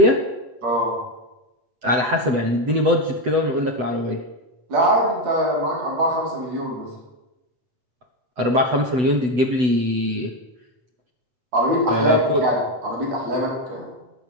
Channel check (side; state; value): left; late; 8.0 ms